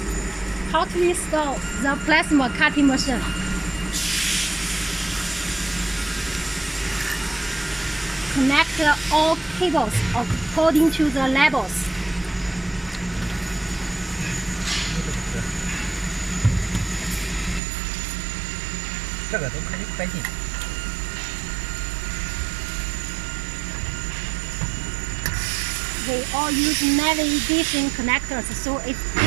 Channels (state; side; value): drops out; left; at 17.6 s